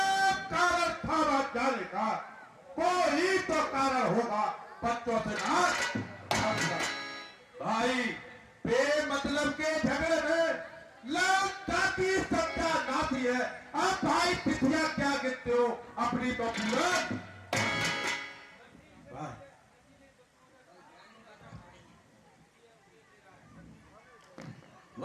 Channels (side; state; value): both; identical; correlation 1.00